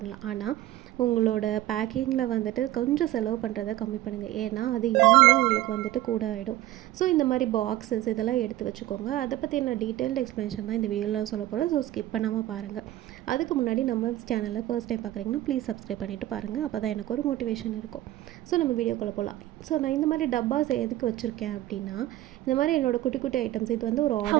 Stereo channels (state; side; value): quieter; left; 15.1 dB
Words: ஆனால் உங்களோட பேக்கிங்கில் வந்துட்டு கொஞ்சம் செலவு பண்ணுறதை கம்மி பண்ணுங்கள். ஏன்னா அது இன்னுமே உங்களுக்கு வந்துட்டு கூட ஆகிடும். ஸோ இந்த மாதிரி பாக்ஸஸ் இதெல்லாம் எடுத்து வச்சுக்கோங்க. அதை பற்றி என்ன டீட்டெயில்டு எக்ஸ்ப்ளனேஷன் தான் இந்த வீடியோவில் சொல்ல போகிறேன். ஸோ ஸ்கிப் பண்ணாமல் பாருங்கள். அதுக்கு முன்னாடி நம்ம சேனலில் ஃபர்ஸ்ட் டைம் பார்க்குறீங்கன்னா ப்ளீஸ் சப்ஸ்கிரைப் பண்ணிவிட்டு பாருங்கள். அப்போ தான் எனக்கு ஒரு மோட்டிவேஷன் இருக்கும். ஸோ நம்ம வீடியோக்குள்ளே போகலாம். ஸோ நான் இந்த மாதிரி டப்பாஸ் எதுக்கு வச்சுருக்கேன் அப்படின்னா, இந்த மாதிரி என்னோடய குட்டி குட்டி ஐட்டம்ஸ் இது வந்து ஒரு